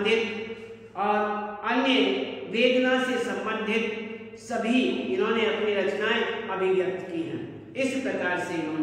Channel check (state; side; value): identical; both; correlation 1.00